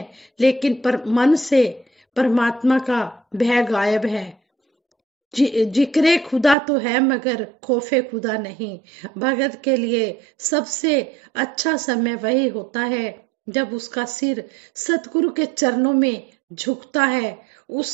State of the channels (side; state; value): left; drops out; at 6.6 s